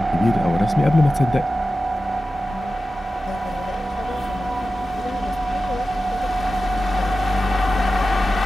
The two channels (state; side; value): normal; both; correlation 0.93